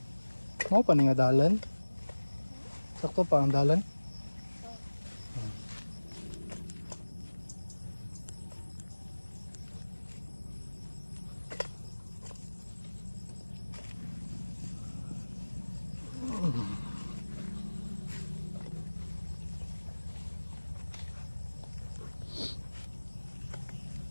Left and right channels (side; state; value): both; inverted; correlation -1.00